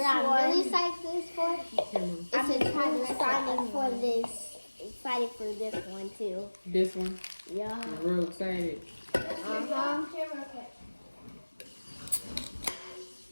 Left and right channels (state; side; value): inverted; both; correlation -1.00